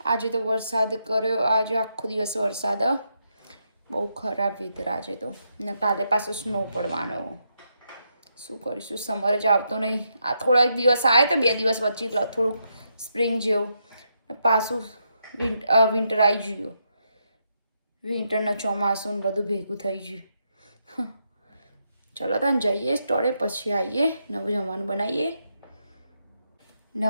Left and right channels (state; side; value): inverted; both; correlation -0.81